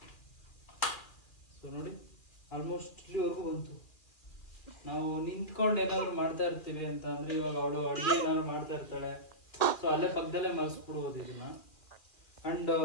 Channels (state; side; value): late; right; 2.4 ms